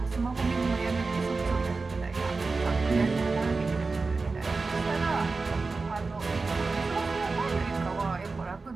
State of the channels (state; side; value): quieter; left; 4.0 dB